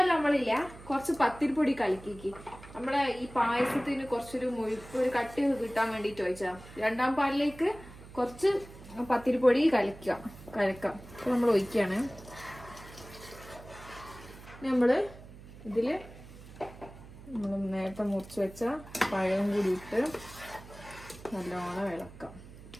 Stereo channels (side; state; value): right; noise; hum, 17 dB below the sound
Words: നമ്മളില്ല, കുറച്ച് പത്തിരിപ്പൊടി കലക്കിക്ക്. നമ്മളെ ഈ പായസത്തിന് കുറച്ചൊരു മുഴുപ്പ്, ഒരു കട്ടി കിട്ടാൻ വേണ്ടിട്ട് ഒഴിച്ചാ. 2-ാം പാലിലേക്ക് കുറച്ച് പത്തിരിപ്പൊടി കലക്കാം. അപ്പൊ നമ്മൾ ഒഴിക്കാണ്. നമ്മള് ഇതില് നമ്മൾ നേരത്തെ മുറിച്ച് വെച്ച പഴം കൂടി ഇട്ട് നല്ലോണം ഇളക്കാം.